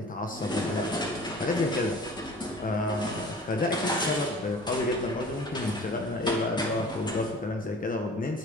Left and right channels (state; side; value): normal; both; correlation 0.44